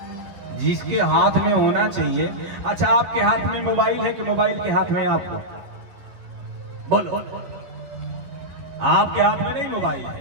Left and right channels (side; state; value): left; late; 11 ms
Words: जिसके हाथ में होना चाहिए। अच्छा, आपके हाथ में मोबाइल है कि मोबाइल के हाथ में आप हो? बोलो। आपके हाथ में नहीं मोबाइल